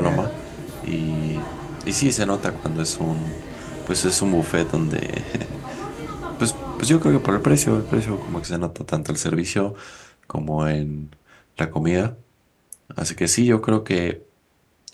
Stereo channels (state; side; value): identical; both; correlation 1.00